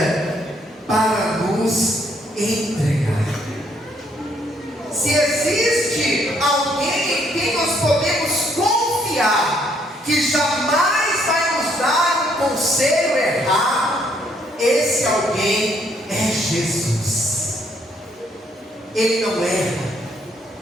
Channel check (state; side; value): normal; both; correlation 0.69